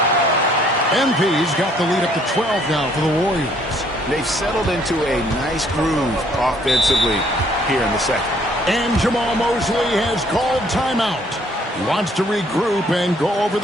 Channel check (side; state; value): both; normal; correlation 0.63